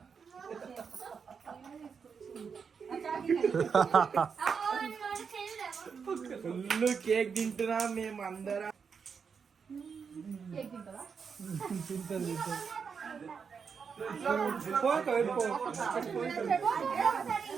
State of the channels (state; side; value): quieter; left; 6.1 dB